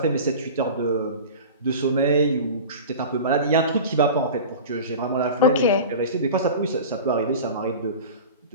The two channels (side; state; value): both; inverted; correlation -0.33